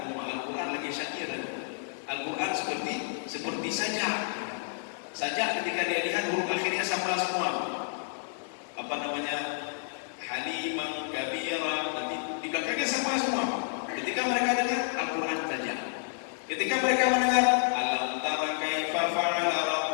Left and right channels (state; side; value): silent; right; digital silence